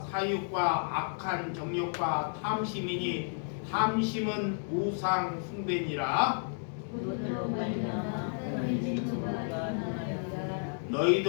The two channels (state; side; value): silent; right; digital silence